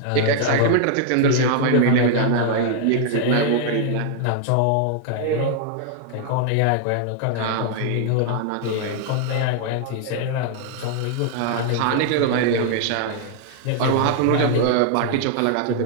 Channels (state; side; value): different; both; correlation 0.00